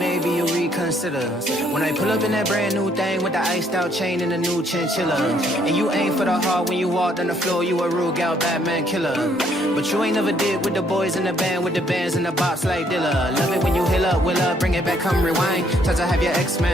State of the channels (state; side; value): normal; both; correlation 0.67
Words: you'll reconsider when I pull up in that brand new thing with the iced out chain and the new chinchilla. And you ain't for the heart when you walked on the floor, you a real gal Batman killer. But you ain't never did with the boys in the band, with the bands and the bops like Dilla. Love it when you hill up, will up, bring it back, come rewind. Try to have your